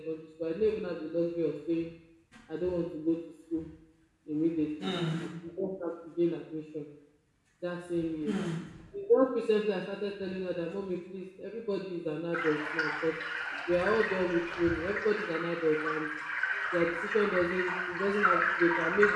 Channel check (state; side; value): identical; both; correlation 1.00